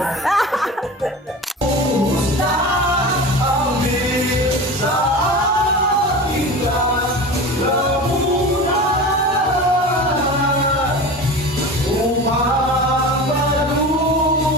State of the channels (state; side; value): normal; both; correlation 0.32